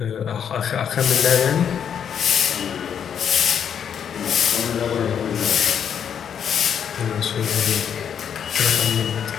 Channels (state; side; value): quieter; right; 8.1 dB